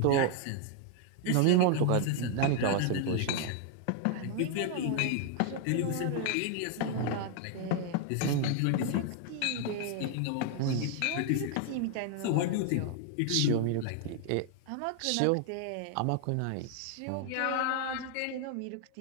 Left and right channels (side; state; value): both; different; correlation 0.00